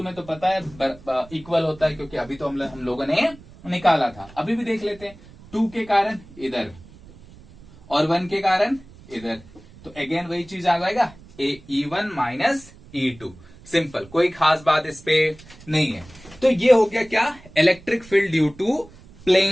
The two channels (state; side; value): noise; right; rumble, 22 dB below the sound